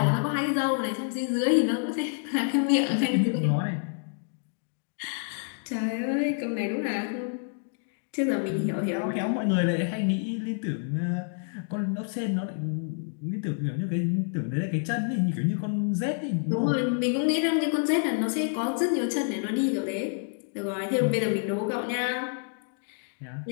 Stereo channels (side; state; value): right; silent; 59 dB below the other